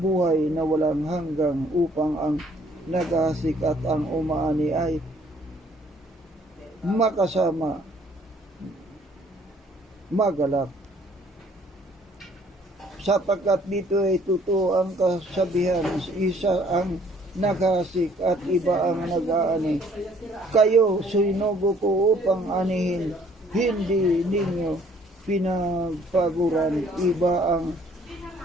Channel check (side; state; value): both; normal; correlation 0.61